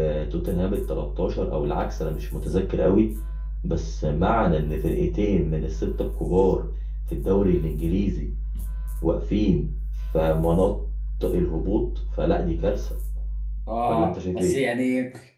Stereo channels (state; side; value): identical; both; correlation 1.00